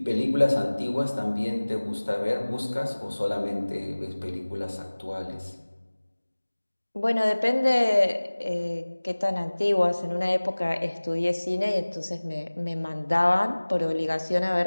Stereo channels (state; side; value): inverted; both; correlation -1.00